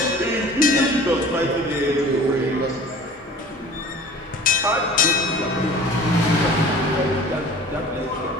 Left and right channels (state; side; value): normal; both; correlation 0.44